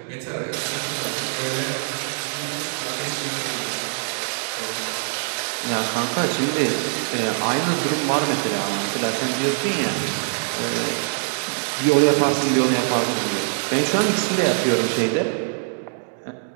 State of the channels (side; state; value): left; silent; digital silence